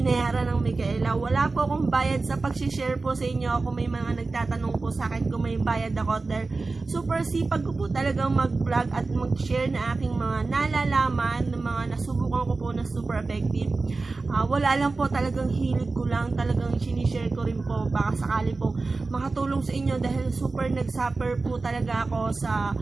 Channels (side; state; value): left; quieter; 3.7 dB